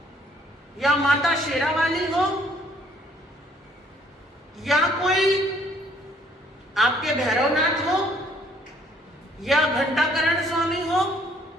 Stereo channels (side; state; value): both; normal; correlation 0.63